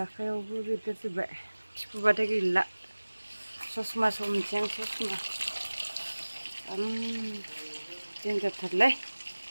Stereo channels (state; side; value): inverted; both; correlation -1.00